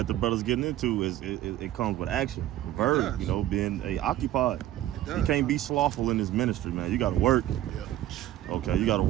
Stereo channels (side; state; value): left; quieter; 13.6 dB